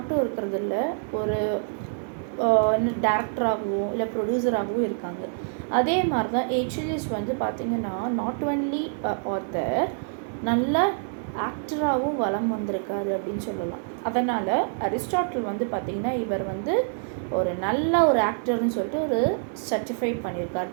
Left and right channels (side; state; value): left; silent; digital silence